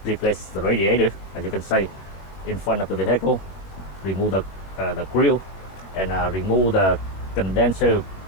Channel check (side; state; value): right; late; 21 ms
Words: the radiator, as you can see in front of the vehicle, remove the grill and remove the condenser